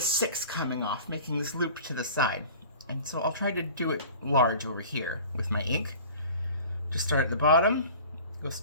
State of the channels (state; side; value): inverted; both; correlation -0.43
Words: 6 coming off, making this loop to the side. And so I'll try to do it large over here with my ink. Just start at the bottom, go